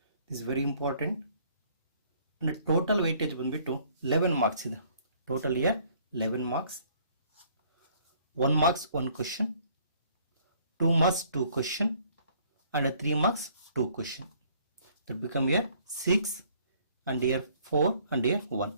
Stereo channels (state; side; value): inverted; both; correlation -0.61